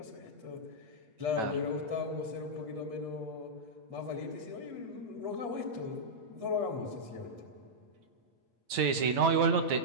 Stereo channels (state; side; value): late; left; 9.2 ms